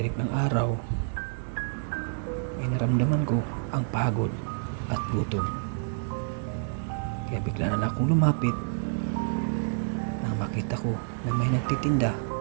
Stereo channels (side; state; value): left; silent; digital silence